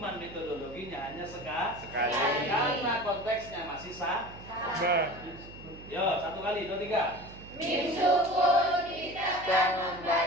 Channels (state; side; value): noise; right; hum, 16 dB below the sound